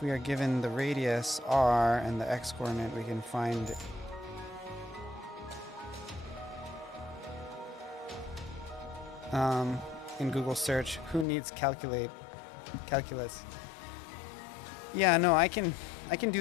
we are given the radius r and the x-coordinate, we can find in Google search, who needs calculus? Yeah, no, I can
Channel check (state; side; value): drops out; right; at 11.2 s